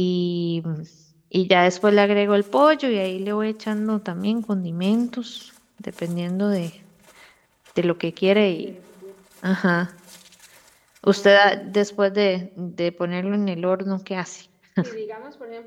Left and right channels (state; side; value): identical; both; correlation 1.00